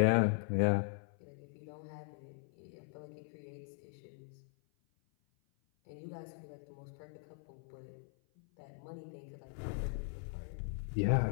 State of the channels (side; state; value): right; silent; 51 dB below the other